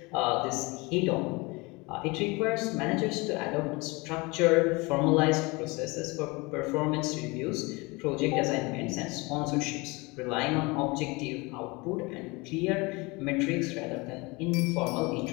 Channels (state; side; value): quieter; right; 25.5 dB